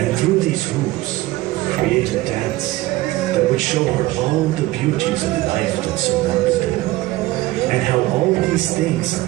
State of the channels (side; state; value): left; quieter; 18.1 dB